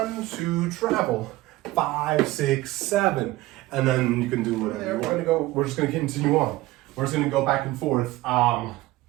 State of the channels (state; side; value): quieter; left; 18.1 dB